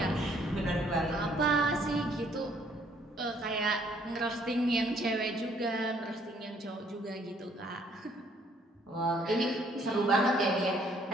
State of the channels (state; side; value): normal; both; correlation 0.64